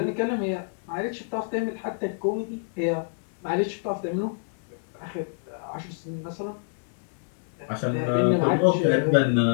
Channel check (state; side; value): silent; right; digital silence